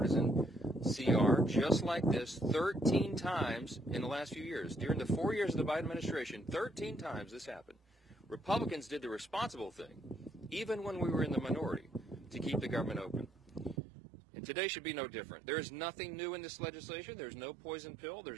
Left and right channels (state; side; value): drops out; left; at 13.8 s